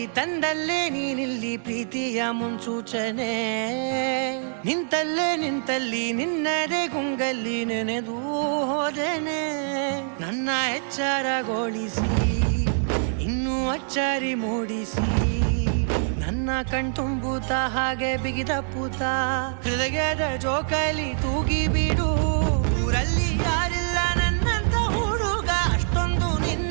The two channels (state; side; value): silent; left; digital silence